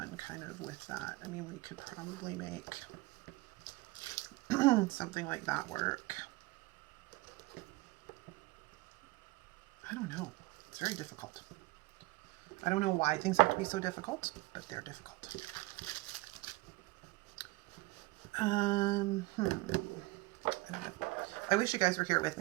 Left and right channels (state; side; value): quieter; left; 22.1 dB